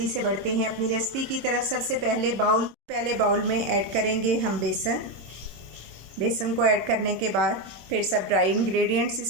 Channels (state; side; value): late; left; 26 ms